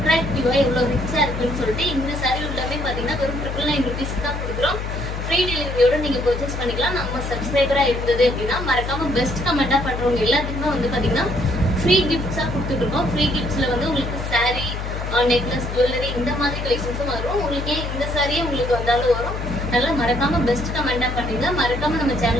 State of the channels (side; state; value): left; noise; hum, 5 dB below the sound